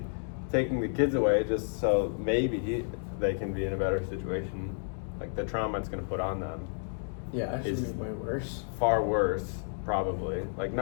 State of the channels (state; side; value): silent; right; digital silence